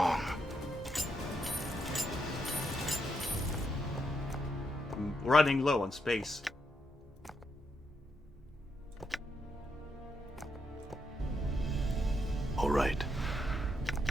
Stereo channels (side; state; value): both; normal; correlation 0.80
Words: I'm running low on space. All right.